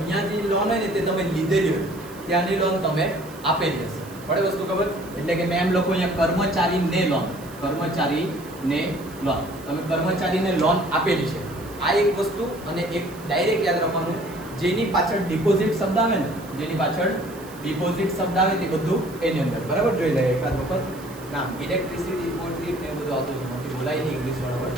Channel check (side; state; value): right; noise; hiss, 21 dB below the sound